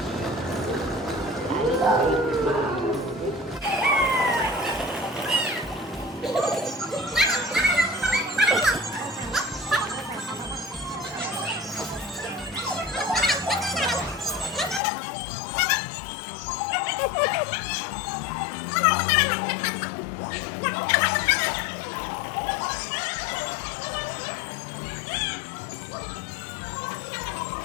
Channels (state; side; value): drops out; right; at 14.8 s